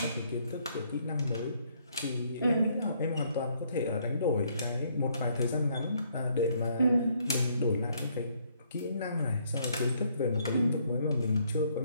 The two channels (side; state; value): both; inverted; correlation -0.68